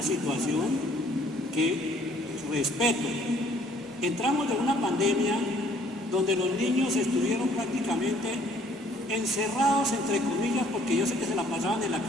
situación que respeto. Entramos de una pandemia donde los niños estuvieron prácticamente encerrados, entre comillas, porque yo sé que se la pasaban en la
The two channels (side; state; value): both; normal; correlation 0.60